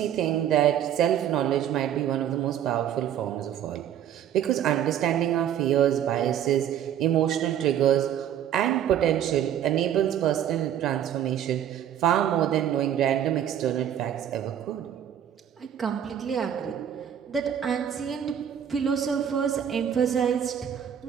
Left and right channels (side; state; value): left; quieter; 9.9 dB